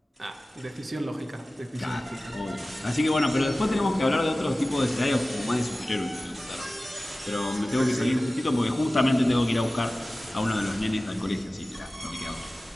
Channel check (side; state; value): both; normal; correlation 0.97